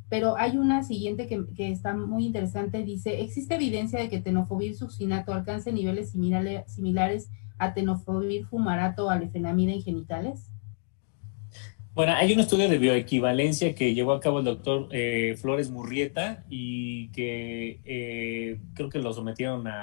pero hay una siguiente que está muy interesante, dice, ¿existe evidencia de que tenofovir succinato alcance niveles similares a tenofovir fumarato o a lefenamida en genitales? Bueno, hay un estudio de bioequivalencia que llevó a cabo el doctor Flores Murrieta y que creo que lo sometieron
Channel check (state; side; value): silent; right; digital silence